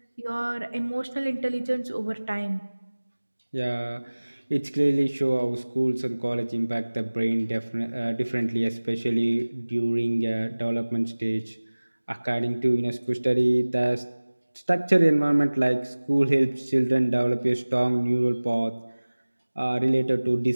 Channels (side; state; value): both; inverted; correlation -1.00